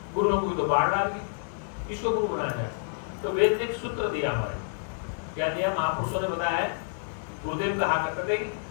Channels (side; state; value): right; silent; 59 dB below the other